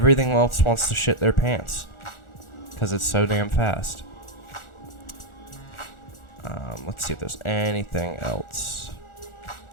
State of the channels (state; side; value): late; right; 1.4 ms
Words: else wants to shit their pants because it's so damn fast. Let's see if there's anything else.